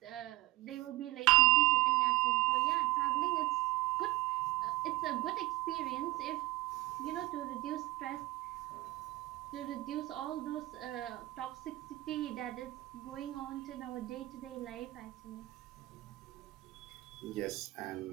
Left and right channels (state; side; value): quieter; left; 19.9 dB